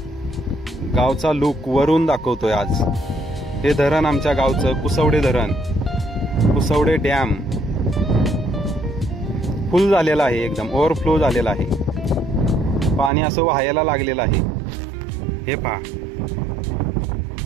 गावचा लुक वरून दाखवतोय आज। हे धरण आमच्या गावचं कुसवडे धरण, कुसवडे डॅम फुल झालेला आहे, एकदम ओव्हरफ्लो झालेला आहे। पाणी असं वाहायला लागलेलं आहे। हे पहा,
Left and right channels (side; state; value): left; drops out; at 13.1 s